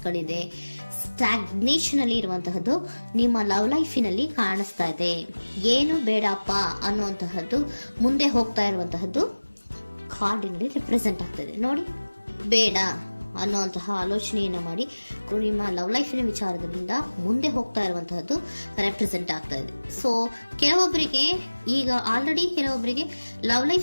ಸ್ಟಾಗ್ನೇಷನ್ ಅಲ್ಲಿ ಇರುವಂತಹದ್ದು ನಿಮ್ಮ ಲವ್ ಲೈಫಿನಲ್ಲಿ ಕಾಣಿಸ್ತಾ ಇದೆ. ಏನು ಬೇಡಪ್ಪ ಅನ್ನುವಂತಹದ್ದು ಮುಂದೆ ಹೋಗ್ತಾ ಇರುವಂತಹದ್ದು ಕಾರ್ಡಿನಲ್ಲಿ ರೆಪ್ರೆಸೆಂಟ್ ಆಗ್ತದೆ. ನೋಡಿ, ಬೇಡ ಅನ್ನುವಂತಹ ಆಲೋಚನೆಯನ್ನು ಮಾಡಿ ನಿಮ್ಮ ಲವ್ ಲೈಫಿನ ವಿಚಾರದಿಂದ ಮುಂದೆ ಹೋಗ್ತಾ ಇರುವಂತಹದ್ದು ರೆಪ್ರೆಸೆಂಟ್ ಆಗ್ತಾ ಇದೆ. ಸೊ ಕೆಲವೊಬ್ಬರಿಗೆ ಈಗ ಆಲ್ರೆಡಿ ಕೆಲವೊಬ್ಬರಿಗೆ ಲವ್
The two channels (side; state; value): both; inverted; correlation -1.00